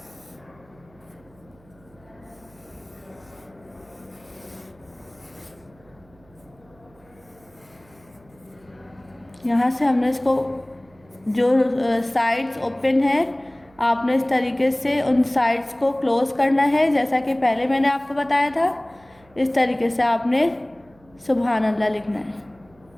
यहाँ से हमने इसको जो साइड्स ओपन है, आपने इस तरीके से उन साइड्स को क्लोज करना है, जैसा कि पहले मैंने आपको बताया था। इस तरीके से आपने सुभान अल्लाह लिखना है।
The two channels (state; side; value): noise; right; hum, 29 dB below the sound